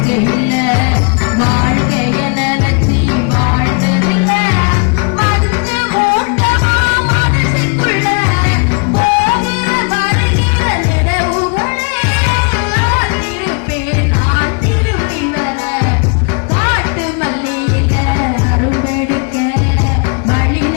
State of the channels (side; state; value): right; quieter; 35.8 dB